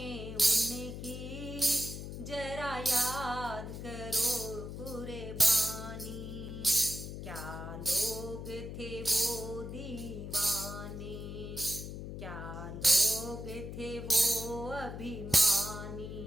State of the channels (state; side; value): noise; left; hum, 8 dB below the sound